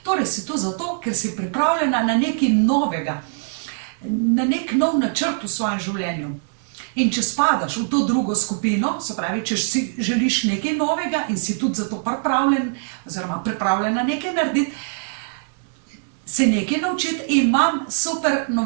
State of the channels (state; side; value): silent; left; 64 dB below the other